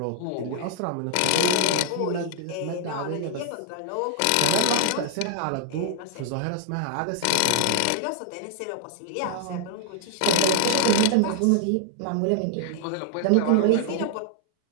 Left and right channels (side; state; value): both; different; correlation 0.00